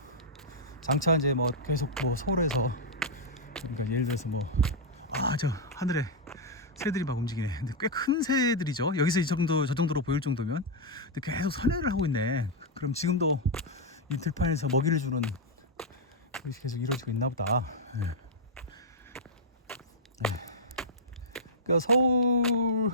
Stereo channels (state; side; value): normal; both; correlation -0.04